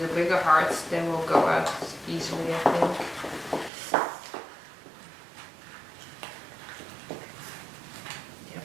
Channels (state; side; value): drops out; left; at 3.7 s